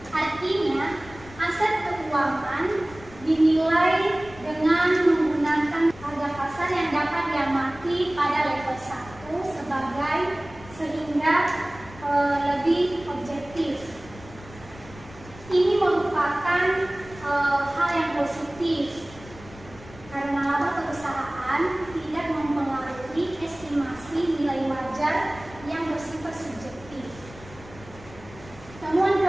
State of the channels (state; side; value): noise; left; rumble, 19 dB below the sound